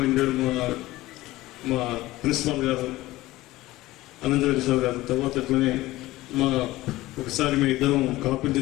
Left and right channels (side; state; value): right; quieter; 17.7 dB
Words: మా ప్రిన్సిపాల్ గారు అనంతరెడ్డి సార్ గారు, తర్వాత అట్లనే ఒకసారి మేము ఇద్దరం కాపీలు